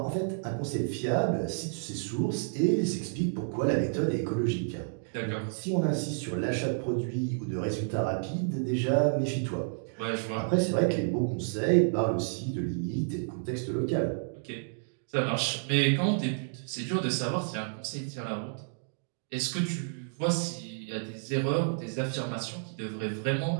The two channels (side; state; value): left; silent; digital silence